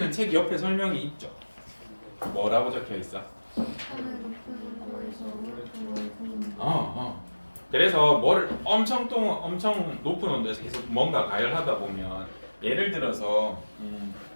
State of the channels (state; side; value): inverted; both; correlation -1.00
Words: 책 옆에 설명이 있죠. 뭐라고 적혀 있어? 그래서 뭐를 엄청 높은 온도에서 계속 뭔가 가열하다 보면 예를 들어서